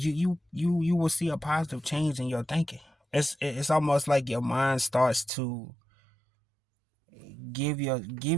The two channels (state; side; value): drops out; left; at 5.3 s